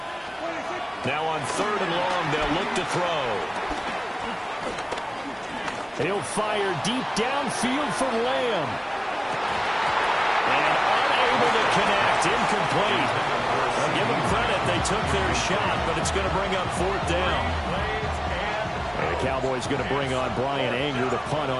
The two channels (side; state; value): both; identical; correlation 1.00